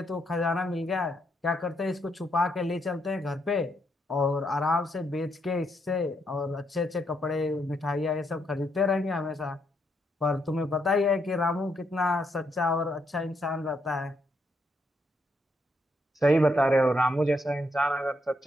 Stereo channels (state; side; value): normal; both; correlation 0.77